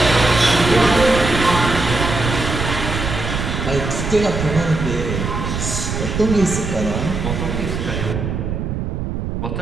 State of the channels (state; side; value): noise; right; rumble, 3 dB below the sound